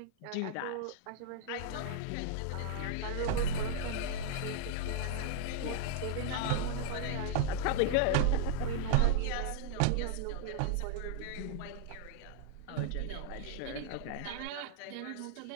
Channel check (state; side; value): different; both; correlation -0.01